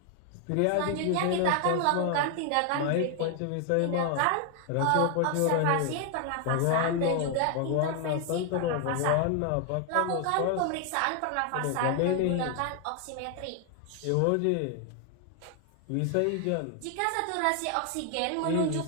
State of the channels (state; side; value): different; both; correlation 0.00